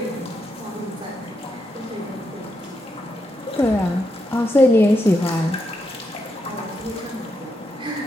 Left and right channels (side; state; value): both; normal; correlation 0.82